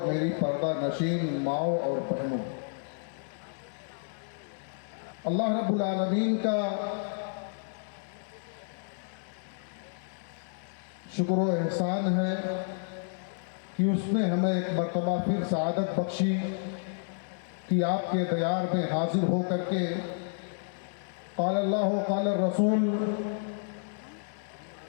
میری پردہ نشین ماؤں اور بہنوں، اللہ رب العالمین کا شکر و احسان ہے کہ اس نے ہمیں ایک مرتبہ پھر سعادت بخشی کہ آپ کے دیار میں حاضر ہو کر کے قال اللہ قال الرسول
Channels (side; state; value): right; silent; digital silence